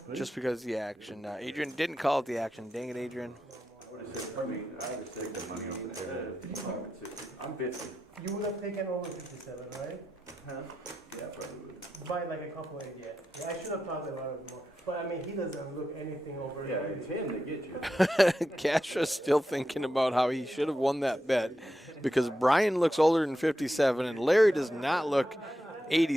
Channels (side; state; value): both; normal; correlation 0.88